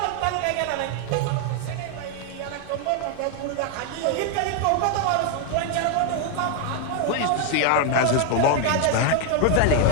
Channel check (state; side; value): different; both; correlation 0.00